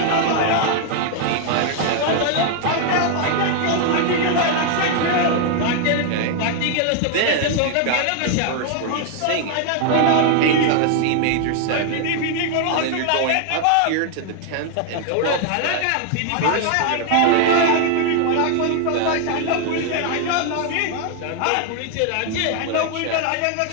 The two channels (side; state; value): both; different; correlation 0.00